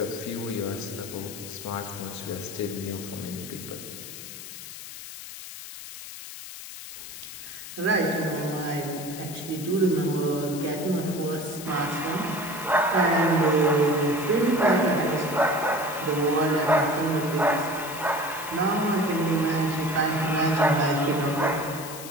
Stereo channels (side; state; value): left; noise; hiss, 12 dB below the sound